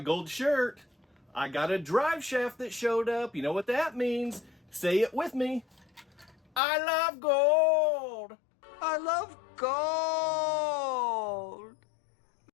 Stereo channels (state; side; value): drops out; right; at 6.6 s